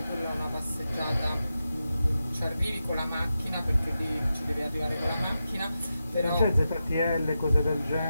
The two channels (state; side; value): inverted; both; correlation -0.90